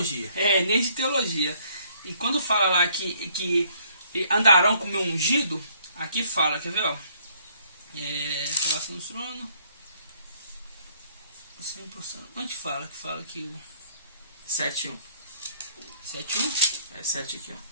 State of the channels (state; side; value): inverted; both; correlation -0.64